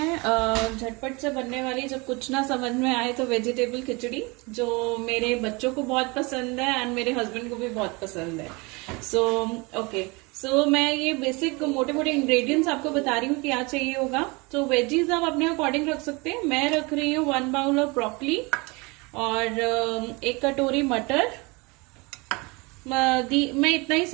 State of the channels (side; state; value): left; quieter; 26.9 dB